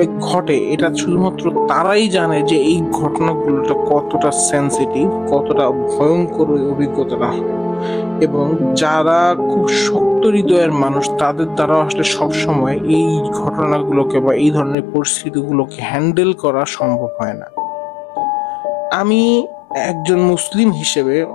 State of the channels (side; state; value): right; drops out; at 14.8 s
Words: ঘটে এটা শুধুমাত্র তারাই জানে যে এই ঘটনাগুলো কতটা সেন্সিটিভ, কতটা ভয়ঙ্কর অভিজ্ঞতাটা হয়। এবং যারা খুব শক্ত হৃদয়ের মানুষ তাদের দ্বারা আসলে সবসময় এই ঘটনাগুলোকে বা এই ধরনের পরিস্থিতিগুলোকে হ্যান্ডেল করা সম্ভব হয় না। আমি একজন মুসলিম হিসেবে,